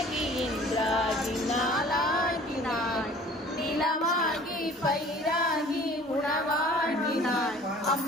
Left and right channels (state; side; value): normal; both; correlation 0.49